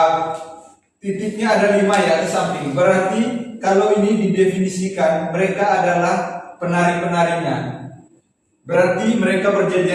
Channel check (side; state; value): both; identical; correlation 1.00